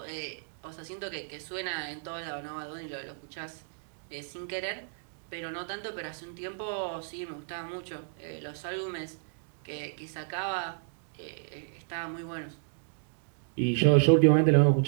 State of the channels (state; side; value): silent; left; digital silence